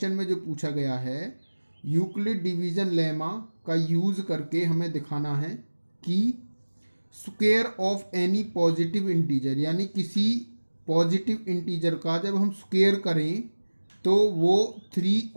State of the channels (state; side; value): inverted; both; correlation -1.00